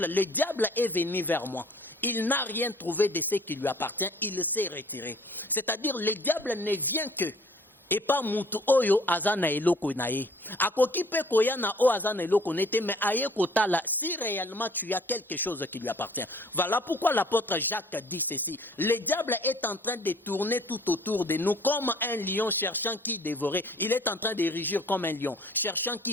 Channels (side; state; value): both; normal; correlation 0.54